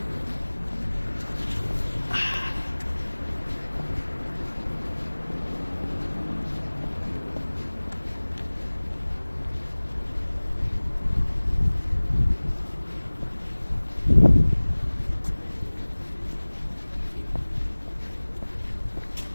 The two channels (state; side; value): inverted; both; correlation -1.00